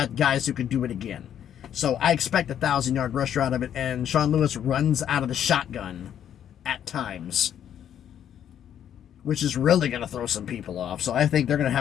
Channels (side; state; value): right; quieter; 9.8 dB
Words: guys who can do it again. So I expect a 1,000-yard rusher out of it, and Sean Lewis runs out of the shotgun at times, which is really going to throw some people off. So I think they're going to